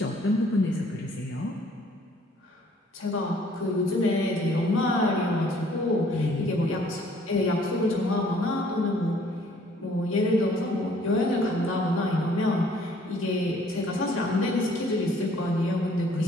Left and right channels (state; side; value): normal; both; correlation 0.59